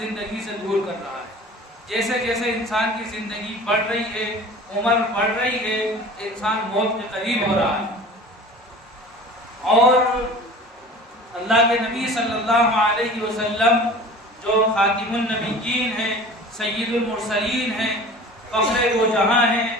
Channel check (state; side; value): normal; both; correlation 0.41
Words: سے دور کر رہا ہے۔ جیسے جیسے انسان کی زندگی بڑھ رہی ہے، عمر بڑھ رہی ہے، انسان موت کے قریب ہو رہا ہے۔ اور اللہ کے نبی صلی اللہ علیہ وسلم جو خاتم النبیین ہیں، سید المرسلین ہیں، فخر دو جہاں ہیں،